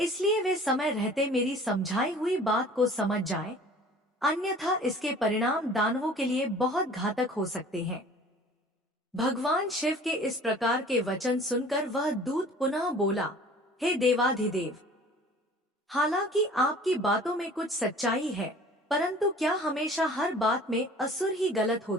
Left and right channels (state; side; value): normal; both; correlation 0.47